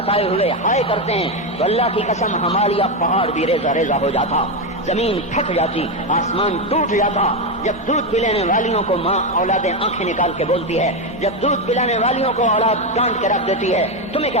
ہوئے ہائے کرتے ہیں تو اللہ کی قسم ہمالیہ پہاڑ بھی ریزہ ریزہ ہو جاتا، زمین پھٹ جاتی، آسمان ٹوٹ جاتا۔ جب دودھ پلانے والیوں کو ماں اولادیں آنکھیں نکال کے بولتی ہے، جب دودھ پلانے والیوں کو اولاد ڈانٹ کے رکھ دیتی ہے، تمہیں کیا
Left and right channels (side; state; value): left; noise; hum, 24 dB below the sound